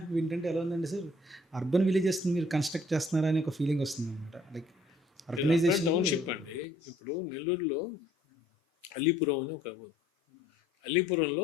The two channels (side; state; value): both; normal; correlation 0.60